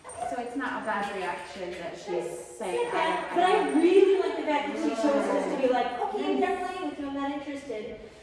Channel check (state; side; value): identical; both; correlation 1.00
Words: So it's not a bad reaction that she's saying. But I really like the fact that she chose us to be like, okay, I'm done playing with you, I'm not interested.